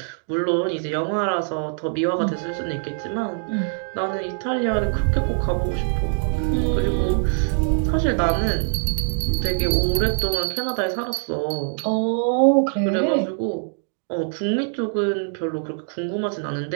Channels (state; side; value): silent; left; digital silence